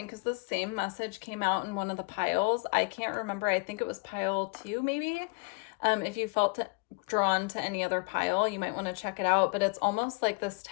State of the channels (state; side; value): quieter; right; 31.6 dB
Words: because the same message came out in one of the piles. I can't remember. I think it was pile 2, maybe. If you felt drawn to any other pile, you might want to check it out. But it's almost like this